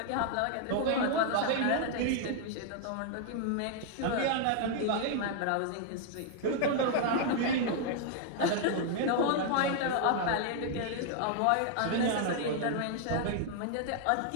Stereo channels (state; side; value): different; both; correlation 0.00